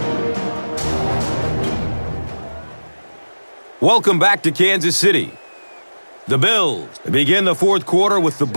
Welcome back to Kansas City. The Bills begin the 4th quarter with the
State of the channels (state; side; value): inverted; both; correlation -1.00